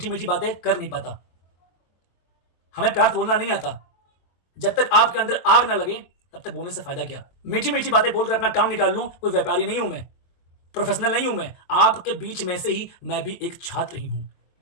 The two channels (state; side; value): late; right; 23 ms